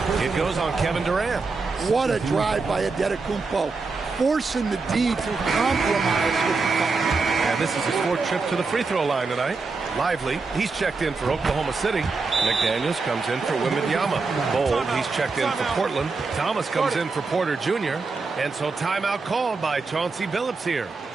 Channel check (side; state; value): left; quieter; 4.2 dB